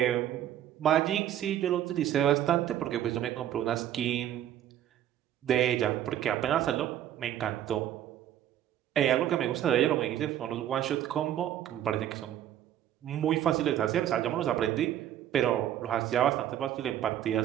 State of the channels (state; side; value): quieter; left; 11.5 dB